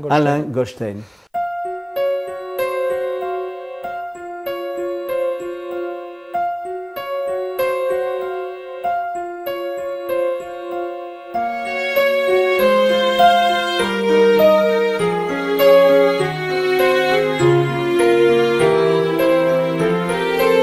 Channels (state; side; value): identical; both; correlation 1.00